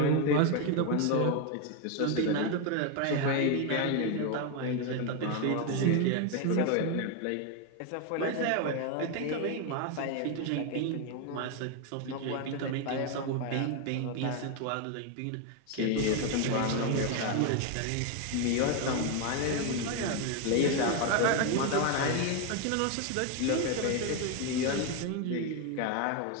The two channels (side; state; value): both; different; correlation 0.01